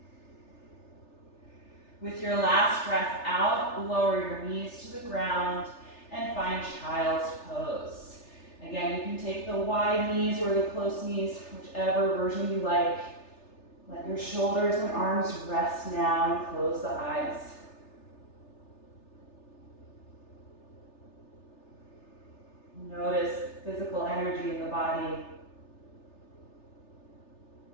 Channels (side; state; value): right; late; 3.3 ms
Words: With your last breath out, lower your knees to the ground and find child's pose. Again, you can take the wide knees or the close knees, whichever version you like. Let your shoulders and arms rest now and close the eyes. Notice physical energy in the body.